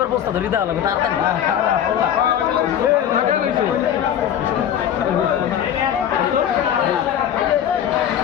বস্তা ধরি দেওয়া লাগবে তাড়াতাড়ি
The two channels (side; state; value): right; quieter; 9.8 dB